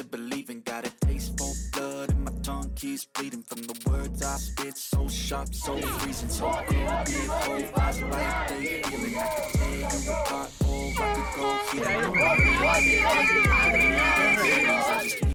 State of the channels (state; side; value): identical; both; correlation 1.00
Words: believing. Got a taste for blood and my tongue keeps bleeding from the words I spit. So sharp, so freezing, so cold. Be it cold, eyes like they feeling. I could tear you apart or I could go healing.